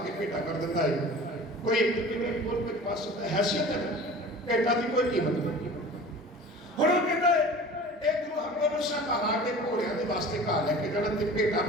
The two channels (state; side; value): normal; both; correlation 0.41